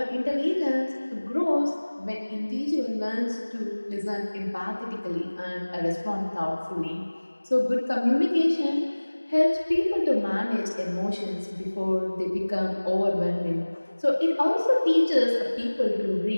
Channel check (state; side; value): inverted; both; correlation -1.00